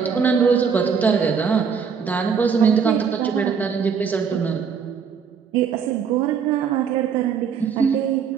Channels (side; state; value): left; quieter; 6.5 dB